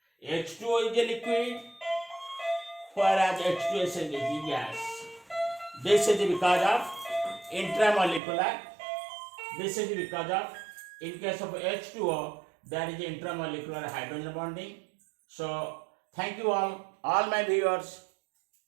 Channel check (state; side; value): drops out; left; at 8.2 s